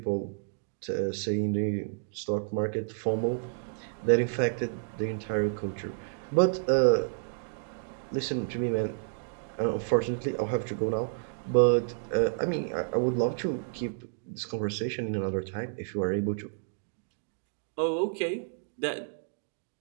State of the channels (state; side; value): silent; left; digital silence